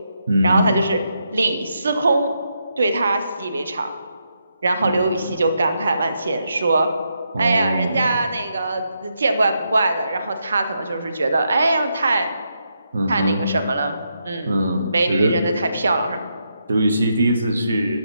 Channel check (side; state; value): both; inverted; correlation -0.81